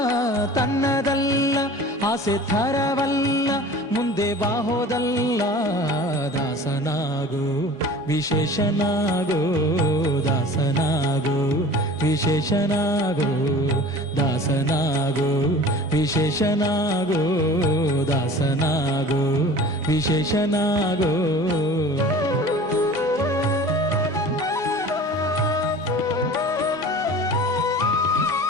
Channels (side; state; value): both; normal; correlation 0.41